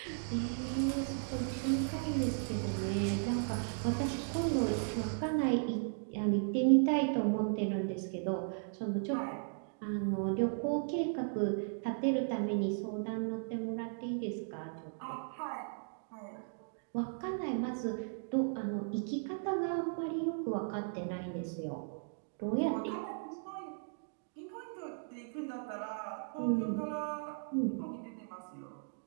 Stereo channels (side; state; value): left; silent; digital silence